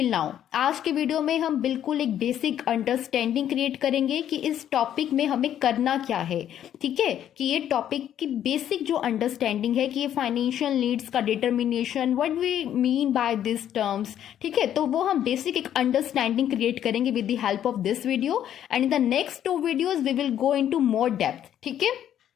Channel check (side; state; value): right; quieter; 10.5 dB